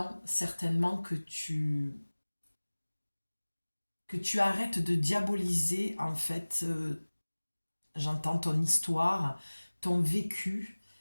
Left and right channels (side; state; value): both; inverted; correlation -1.00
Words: certainement que tu arrêtes de diaboliser, en fait, j'entends ton histoire, ton vécu,